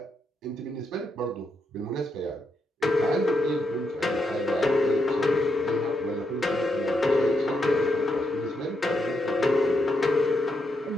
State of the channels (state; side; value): normal; both; correlation 0.81